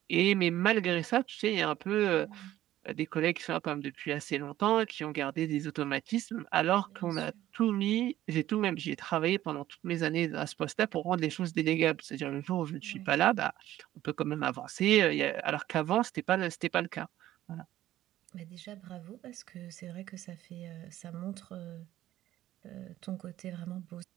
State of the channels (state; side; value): quieter; left; 13.8 dB